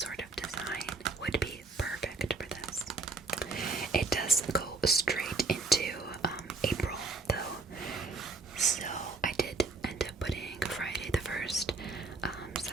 of design would be perfect for this. It does go straight into April though, so I did end up putting Friday the 1st,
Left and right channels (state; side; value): quieter; left; 3.7 dB